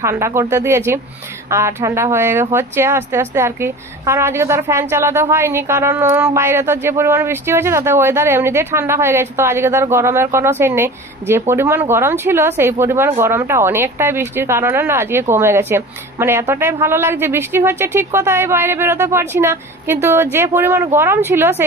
ঠান্ডা করতে দিয়েছি, আর ঠান্ডা হচ্ছে আস্তে আস্তে আর কি, কারণ আজকে তো আর ফ্যান চালাতে হয়নি, কারণ বাইরে তো যে পরিমাণ বৃষ্টি হয়েছে তাতে ওয়েদার এমনিতেই ঠান্ডা হয়ে গেছে। তো আজকে তো আর গরমের কোনো সিন নেই, যে পরিমাণ গরম ছিল সেই পরিমাণ গরমটা অনেকটাই বৃষ্টির কারণে না আজকে কমে গেছে। মানে এতটাই ভালো লাগছে, বৃষ্টি হচ্ছে ঠিক কথা, বাইরে বেরোতে পারছি না, কিন্তু যে পরিমাণ গরম ছিল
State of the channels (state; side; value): normal; both; correlation 0.37